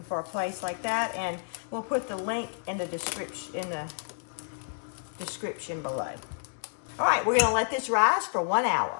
for a place like that. And we'll put the link in the description below. All right, we're going to let this rise for 1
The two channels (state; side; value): silent; right; digital silence